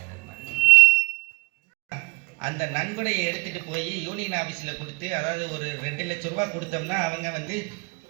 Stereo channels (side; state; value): left; quieter; 27.8 dB